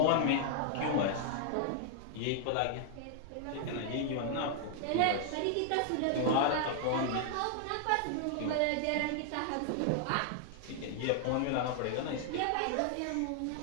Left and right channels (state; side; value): different; both; correlation 0.00